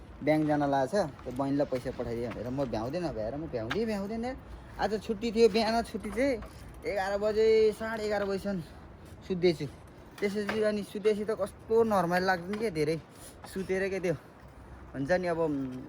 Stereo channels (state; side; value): identical; both; correlation 1.00